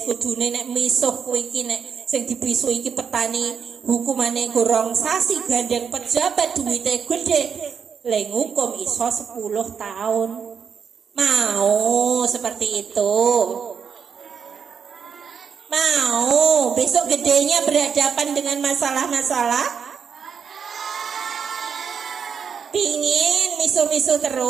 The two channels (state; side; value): quieter; left; 6.7 dB